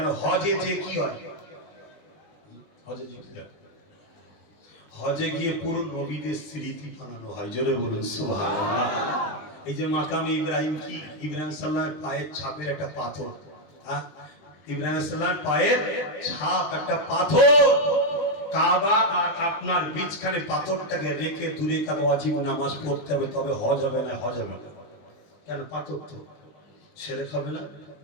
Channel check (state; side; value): late; right; 20 ms